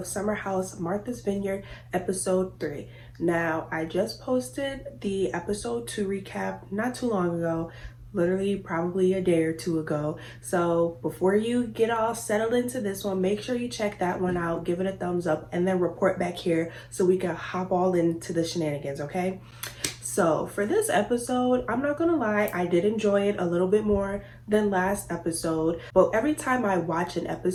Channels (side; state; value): both; identical; correlation 1.00